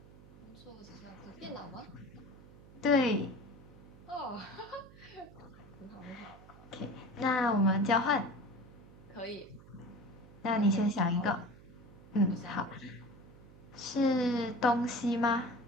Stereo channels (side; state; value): right; noise; hum, 21 dB below the sound